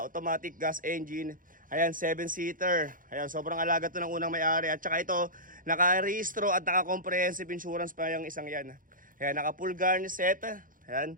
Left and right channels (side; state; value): left; late; 0.40 ms